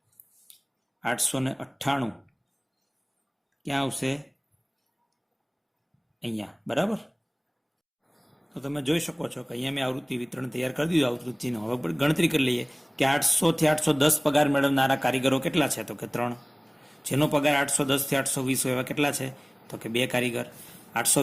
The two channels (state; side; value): identical; both; correlation 1.00